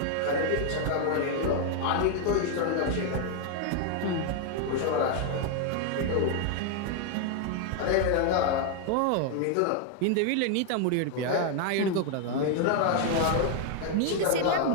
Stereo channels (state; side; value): different; both; correlation 0.00